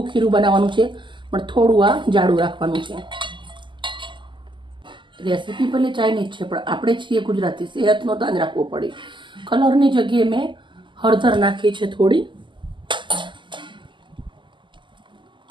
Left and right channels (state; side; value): late; left; 0.24 ms